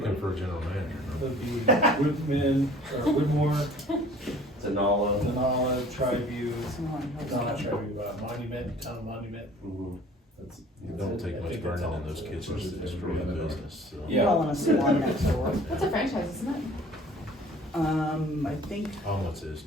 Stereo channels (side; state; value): both; normal; correlation 0.50